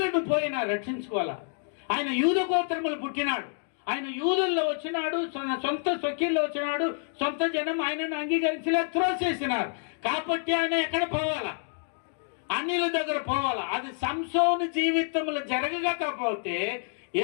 పోయినా రక్షించుకోవాలా. ఆయన యూద గోత్రములు పుట్టినాడు. ఆయన యూదుల్లో వచ్చినాడు, సొంత స్వకీల్లో వచ్చినాడు. సొంత జనం ఆయనను అంగీకరించలే, త్రోసేసినారు. కాబట్టి ఆయన ఎక్కడ పోవాలా? అన్యుల దగ్గర పోవాలా. అది సంసోను జీవితంలో జరగకపోతే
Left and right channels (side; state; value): right; silent; 59 dB below the other